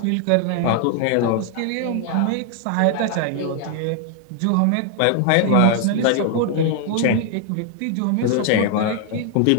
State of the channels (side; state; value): both; different; correlation 0.00